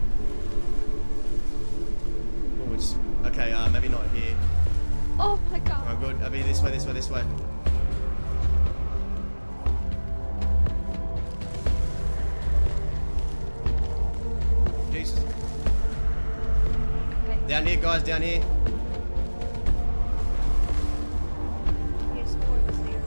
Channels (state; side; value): inverted; both; correlation -1.00